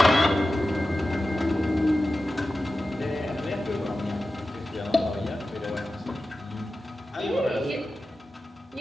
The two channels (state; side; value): normal; both; correlation 0.94